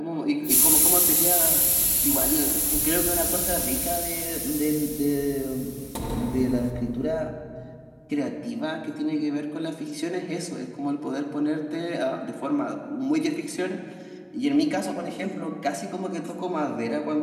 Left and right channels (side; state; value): both; identical; correlation 1.00